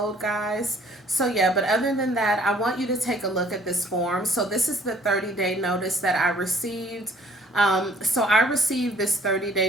guys. So, yeah, but other than that, I want you to take a look at this form. So, this is the 30-day notice that I received. So, I received this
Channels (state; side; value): normal; both; correlation 0.57